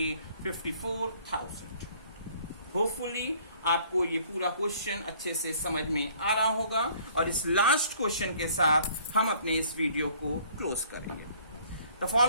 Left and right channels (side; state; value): both; inverted; correlation -0.57